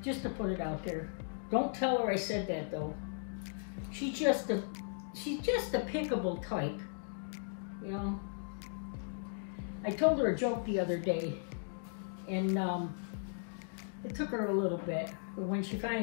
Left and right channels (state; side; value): silent; right; digital silence